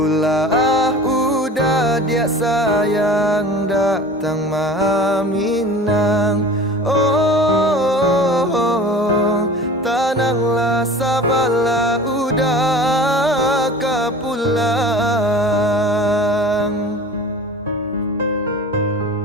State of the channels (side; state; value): both; normal; correlation 0.39